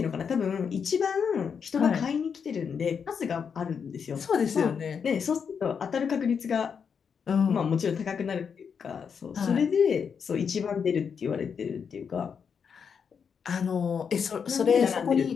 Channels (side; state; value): right; quieter; 6.6 dB